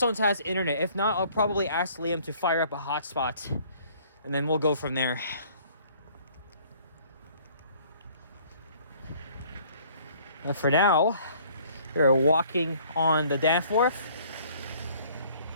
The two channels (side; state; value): both; inverted; correlation -0.57